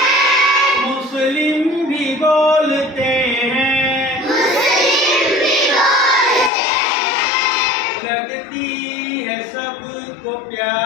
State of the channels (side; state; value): right; drops out; at 6.5 s